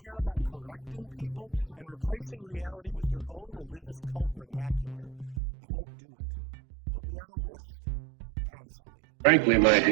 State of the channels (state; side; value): drops out; left; at 5.4 s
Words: about correcting people and replacing reality with your own religious cult vernacular. I won't do it. Put me on a list. Cancel me. Frankly, my